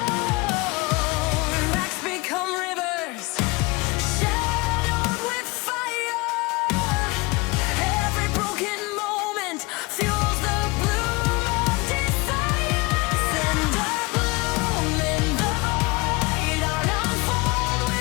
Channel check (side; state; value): right; quieter; 24.1 dB